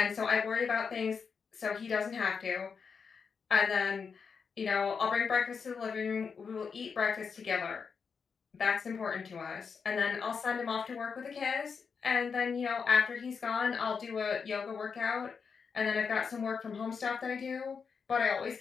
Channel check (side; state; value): right; quieter; 5.8 dB